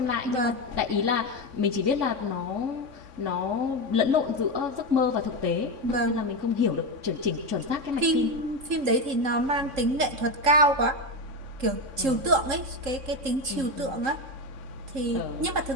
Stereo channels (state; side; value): late; left; 3.8 ms